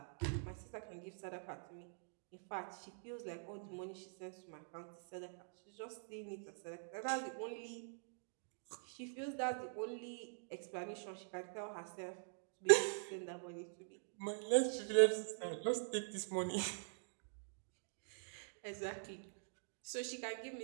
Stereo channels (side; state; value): left; silent; digital silence